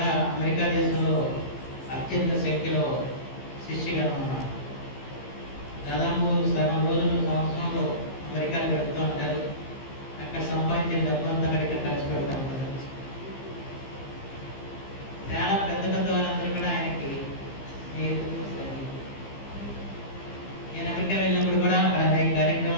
అమెరికా దేశంలో అత్యంత సంఖ్యలో శిష్యగణం ఉన్నారు. దాదాపు సగం రోజులు సంవత్సరంలో అమెరికాలో గడుపుతూ ఉంటారు. అక్కడ సంపాదించిన డబ్బు అంతా అక్కడికి ఖర్చు పెడతా ఉంటారు. చాలా పెద్ద పెద్ద వాళ్ళందరూ కూడా ఆయనకి స్నేహితులు. నేను అమెరికా వెళ్ళినప్పుడు కూడా అక్కడ అనేక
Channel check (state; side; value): late; right; 15 ms